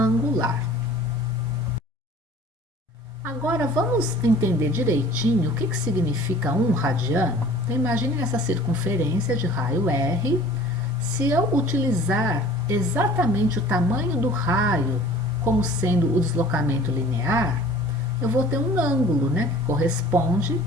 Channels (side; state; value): both; normal; correlation 0.48